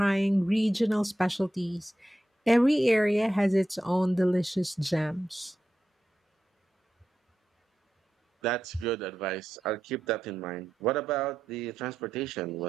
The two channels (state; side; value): normal; both; correlation 0.89